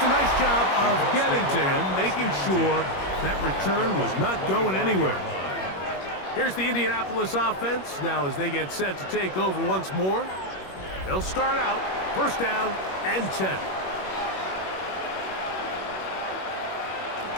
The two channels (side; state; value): right; late; 21 ms